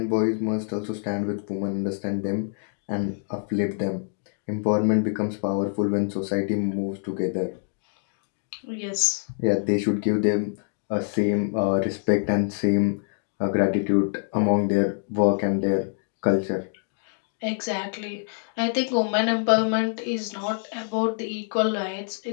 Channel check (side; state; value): right; silent; digital silence